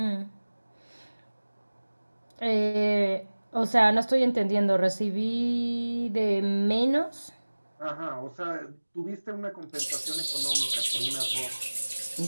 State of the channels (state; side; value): inverted; both; correlation -1.00